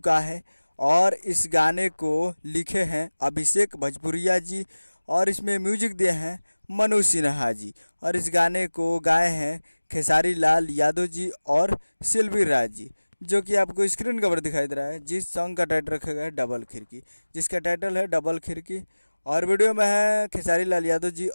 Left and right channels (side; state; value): both; inverted; correlation -1.00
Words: है और इस गाने को लिखे हैं अभिषेक भोजपुरिया जी और इसमें म्यूजिक दिए हैं मनु सिन्हा जी और इस गाने को गाए हैं खेसारी लाल यादव जी और सिल्वी राज जी, जो कि आपको स्क्रीन कवर दिखाई दे रहा है। जिस सॉन्ग का टाइटल रखा गया है डबल खिड़की, जिसका टाइटल है डबल खिड़की। और वीडियो में है खेसारी लाल यादव जी